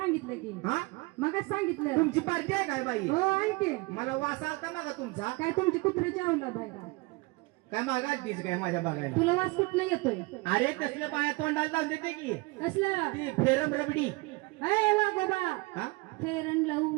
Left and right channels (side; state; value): left; quieter; 25.1 dB